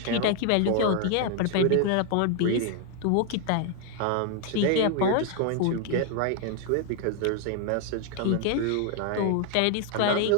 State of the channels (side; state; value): both; different; correlation 0.00